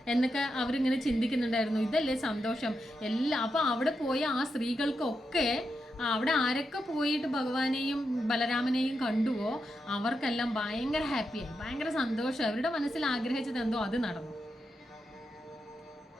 എന്നൊക്കെ അവരിങ്ങനെ ചിന്തിക്കുന്നുണ്ടായിരുന്നു. ഇതല്ലേ സന്തോഷം അപ്പോൾ അവിടെ പോയ ആ സ്ത്രീകൾക്കൊക്കെ, അവിടെ ആരൊക്കെ പോയിട്ട് ഭഗവാനെയും ബലരാമനെയും കണ്ടുവോ അവർക്കെല്ലാം ഭയങ്കര ഹാപ്പിയായി, ഭയങ്കര സന്തോഷം. അവരുടെ മനസ്സിൽ ആഗ്രഹിച്ചത് എന്തോ അത് നടന്നു.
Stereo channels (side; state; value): both; normal; correlation 0.86